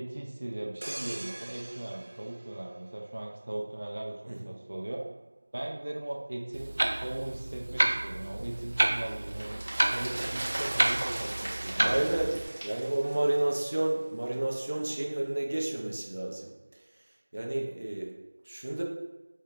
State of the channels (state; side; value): inverted; both; correlation -1.00